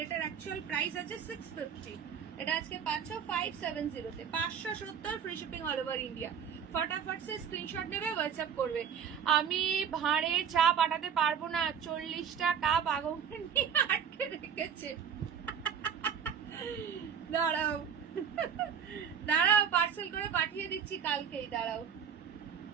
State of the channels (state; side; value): quieter; left; 7.6 dB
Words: এটার অ্যাকচুয়াল প্রাইস আছে 650, এটা আজকে পাচ্ছ 570 তে। 570 free shipping all over India. ফটাফট সে স্ক্রিনশট নেবে, হোয়াটসঅ্যাপ করবে। আমি ভাঁড়ে চা পাঠাতে পারবো না, 40টা কাপ আগুন নিয়ে আটকে রেখেছে। দাঁড়াও দাঁড়াও, পার্সেল করে পাঠিয়ে দিচ্ছি কালকেই, দাঁড়াও।